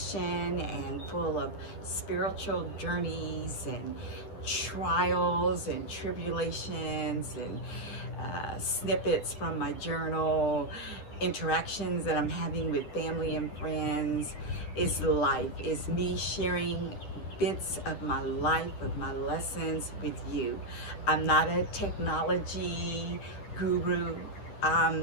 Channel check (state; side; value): late; right; 10 ms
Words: and full of spiritual journeys and trials and tribulations and snippets from my journal, interactions that I'm having with family and friends. It's life. It's me sharing bits of my life, of my lessons with you. I'm not a technology guru.